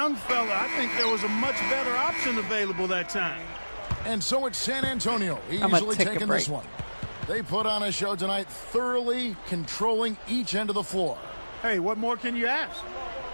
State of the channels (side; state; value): both; inverted; correlation -1.00